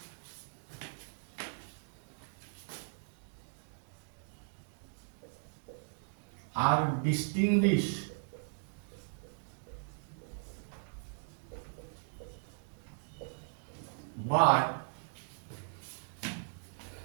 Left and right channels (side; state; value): left; silent; digital silence